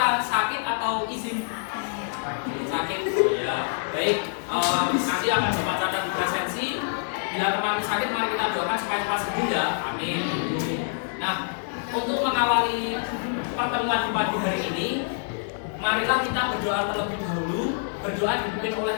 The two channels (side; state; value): right; silent; digital silence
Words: apa? Sakit atau izin? Sakit. Oh, ya. Baik. Nanti akan Bapak catat di presensi. Bila teman sakit, mari kita doakan supaya cepat sembuh ya. Amin. Nah, untuk mengawali pertemuan di pagi hari ini, marilah kita berdoa terlebih dahulu. Berdoa dipimpin oleh